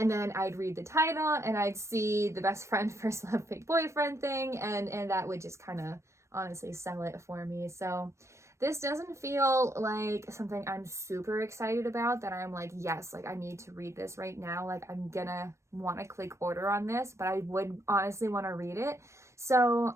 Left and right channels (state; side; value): late; left; 0.14 ms